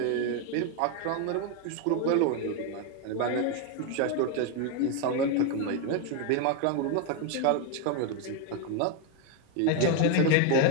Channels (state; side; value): different; both; correlation 0.01